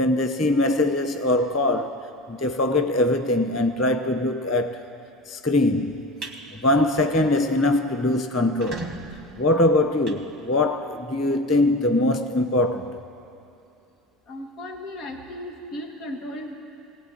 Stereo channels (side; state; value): both; normal; correlation 0.31